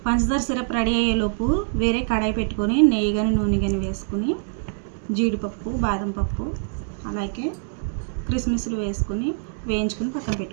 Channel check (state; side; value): silent; left; digital silence